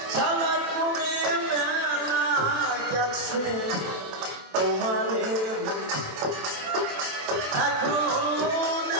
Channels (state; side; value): late; left; 27 ms